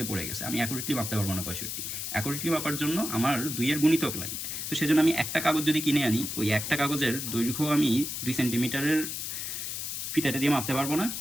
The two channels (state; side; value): noise; left; hiss, 4 dB below the sound